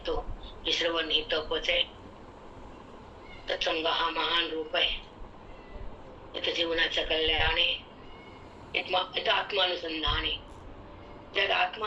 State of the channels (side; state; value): both; identical; correlation 1.00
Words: हे श्रवण ही तपच आहे. तत्संग हा महान रूप आहे. इथं जीवनाचं कल्याण आहे, इथं आत्मानुसंधान आहे. ज्याला